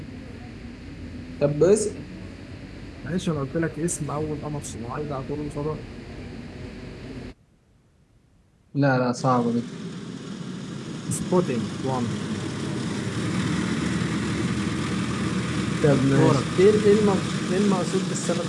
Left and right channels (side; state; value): both; identical; correlation 1.00